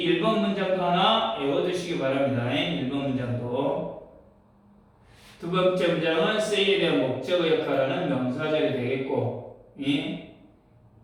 1번 문장도 하나 외워두시기 바랍니다. 1번 문장도. 두 번째 문장은 say에 대한 목적어 역할하는 명사절이 되겠고,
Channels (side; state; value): both; identical; correlation 1.00